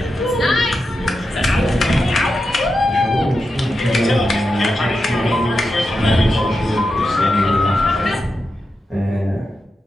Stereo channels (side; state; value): both; normal; correlation 0.89